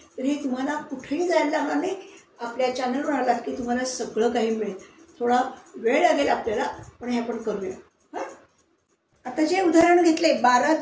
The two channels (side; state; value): both; identical; correlation 1.00